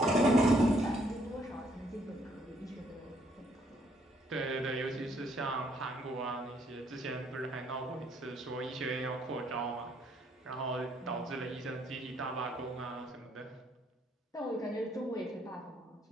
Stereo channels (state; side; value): normal; both; correlation 0.68